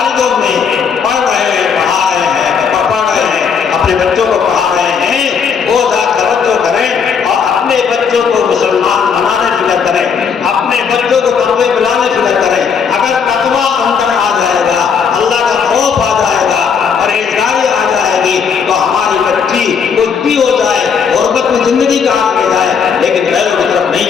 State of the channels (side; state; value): right; quieter; 6.4 dB